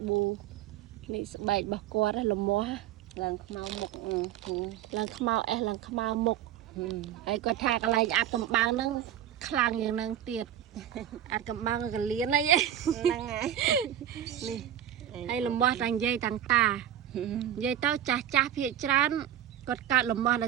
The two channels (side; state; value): left; quieter; 11.0 dB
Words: ប៊ូនេះស្បែករបស់គាត់លំមាស់ឡើងខ្មៅមុខឡើងខ្មៅអេសឡើងខ្មៅមុខហើយគាត់ថាកន្លែងអាត់កំបាំងហ្នឹងខ្លាំងយ៉ាងហ្នឹងទៀតអាត់កំបាំងកលៀនអីហ្នឹងហើយនេះហើយលំមាស់តាំងយាយតាំងតានិយាយទៅចាស់ភាគច្រើនគាត់កាត់លំមាស់ដោ